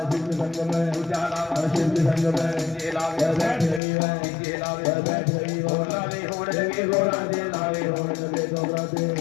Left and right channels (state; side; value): drops out; right; at 3.8 s